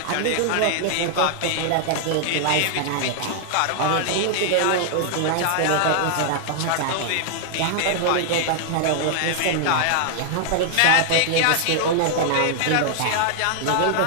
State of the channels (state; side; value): different; both; correlation -0.01